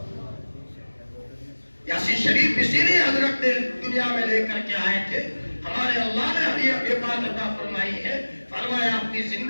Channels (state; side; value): inverted; both; correlation -1.00